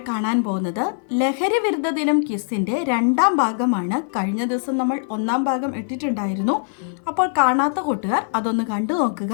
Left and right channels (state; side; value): silent; right; 57 dB below the other